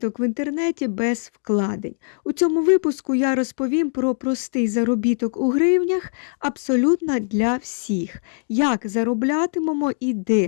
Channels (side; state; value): right; silent; 64 dB below the other